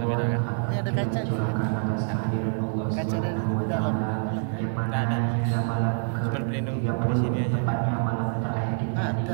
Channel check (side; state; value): left; silent; 61 dB below the other